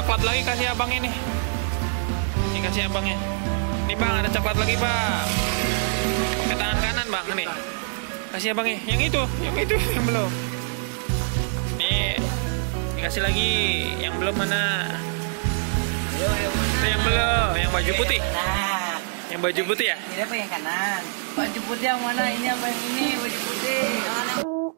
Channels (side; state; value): left; silent; digital silence